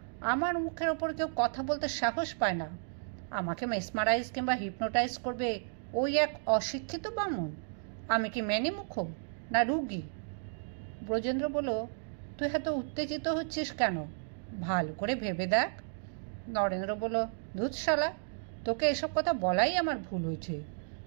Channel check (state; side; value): silent; left; digital silence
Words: আমার মুখের ওপর কেউ কথা বলতে সাহস পায় না। আমাকে মেসমারাইজ কিংবা হিপনোটাইজ করবে ওই এক অশিক্ষিত বামুন? আমি কি মেনিমুখ না রুগী? ব্রজেন্দ্র বলল, তুই এত উত্তেজিত হচ্ছিস কেন? ভালো করে ভেবে দেখ। নরেন্দ্র বলল, ধুৎ শালা, তোকে এসব কথা বলাই আমার ভুল হয়েছে।